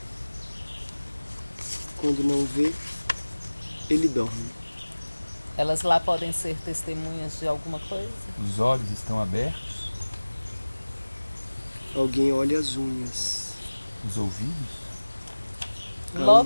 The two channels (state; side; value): inverted; both; correlation -1.00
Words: Quando não vê, ele dorme. Elas lá podem ser testemunhas de alguma coisa? Os olhos estão abertos. Alguém olha as unhas. Os ouvidos.